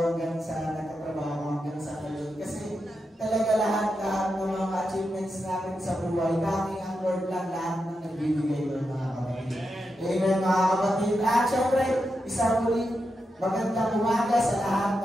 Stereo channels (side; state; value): both; normal; correlation 0.87